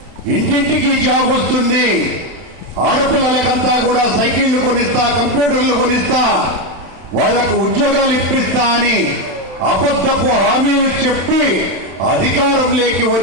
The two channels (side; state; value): left; late; 31 ms